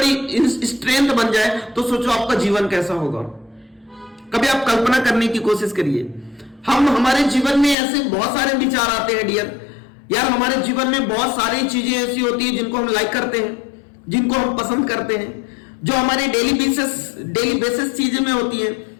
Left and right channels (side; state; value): right; drops out; at 7.8 s